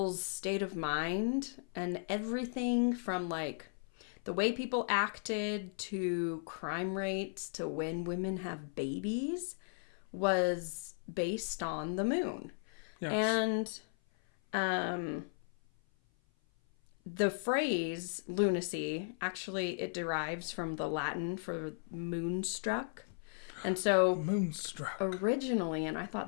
state of mind and everything from like the way people acted to crime rates to when women have babies was based on the moon. Yes. And the phrase lunacy, actually, it derives from the Latin for moonstruck. And so moonstruck. Originally, and I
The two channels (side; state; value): right; silent; 54 dB below the other